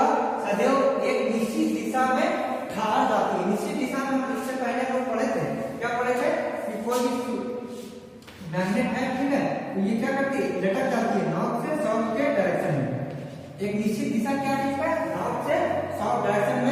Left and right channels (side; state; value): both; identical; correlation 1.00